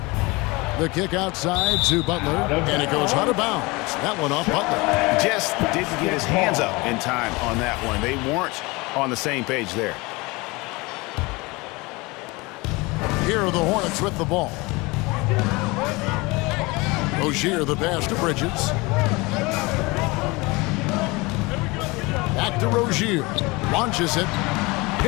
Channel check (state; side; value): quieter; right; 24.4 dB